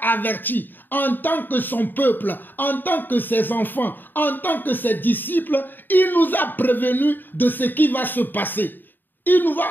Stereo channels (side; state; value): right; late; 0.092 ms